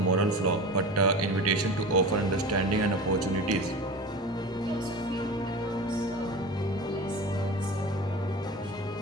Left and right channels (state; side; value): normal; both; correlation 0.32